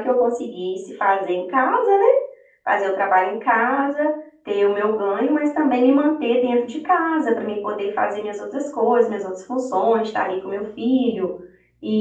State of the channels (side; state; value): both; identical; correlation 1.00